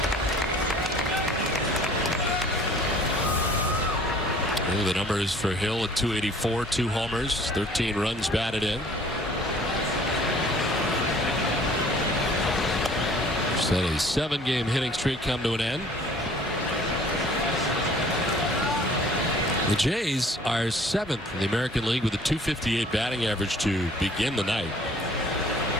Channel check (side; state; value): both; normal; correlation 0.53